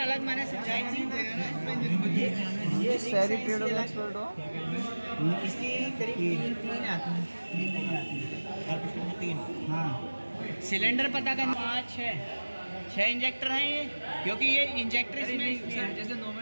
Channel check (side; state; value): both; inverted; correlation -1.00